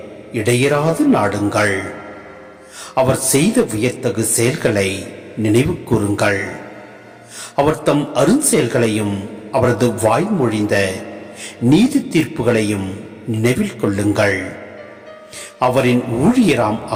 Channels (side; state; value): both; identical; correlation 1.00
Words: இடையராது நாடுங்கள். அவர் செய்த வியத்தகு செயல்களை நினைவு கூறுங்கள். அவர் தம் அருஞ்செயல்களையும் அவரது வாய்மொழிந்த நீதி தீர்ப்புகளையும் நினைவில் கொள்ளுங்கள். அவரின் ஊழியராம்